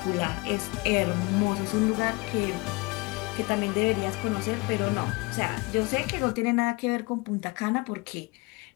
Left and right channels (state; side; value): quieter; right; 26.2 dB